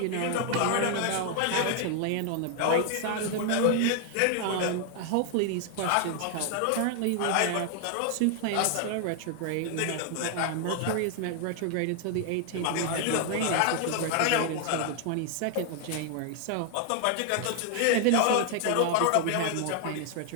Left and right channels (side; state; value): both; different; correlation 0.00